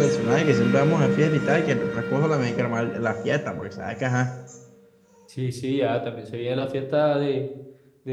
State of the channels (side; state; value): both; identical; correlation 1.00